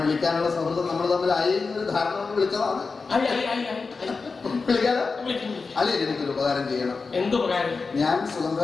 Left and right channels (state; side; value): quieter; right; 4.4 dB